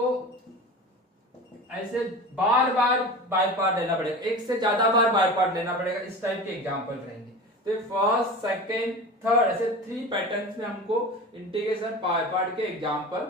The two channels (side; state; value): both; normal; correlation 0.32